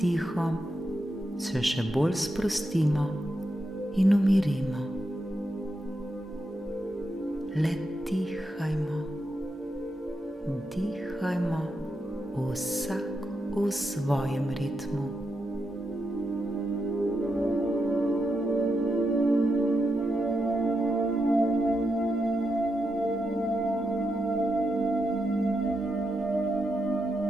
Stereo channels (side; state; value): both; normal; correlation 0.85